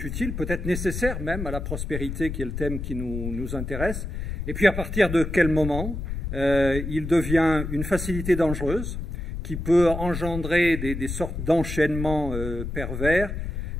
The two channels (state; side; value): noise; left; rumble, 5 dB below the sound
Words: utile, peut-être nécessaire même à la prospérité, qui est le thème qui nous intéresse. Et puis à partir de quel moment il devient une facilité dangereuse qui peut engendrer des sortes d'enchaînements pervers